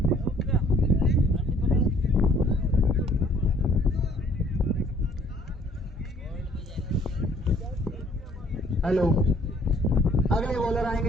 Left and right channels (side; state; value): both; normal; correlation 0.60